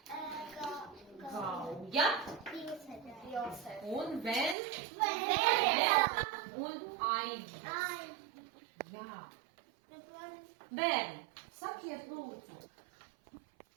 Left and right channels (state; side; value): drops out; left; at 4.5 s